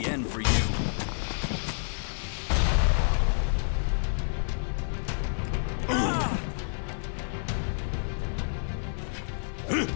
end for you.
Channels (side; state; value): right; silent; 59 dB below the other